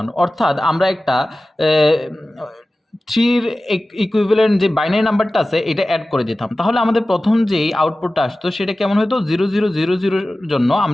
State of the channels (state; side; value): normal; both; correlation 0.96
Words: অর্থাৎ আমরা একটা 3 এর ইকুইভ্যালেন্ট যে বাইনারি নাম্বারটা আছে এটা অ্যাড করে দিতাম। তাহলে আমাদের প্রথম যেই আউটপুটটা আসতো সেটা কেমন হতো 0000 এর জন্য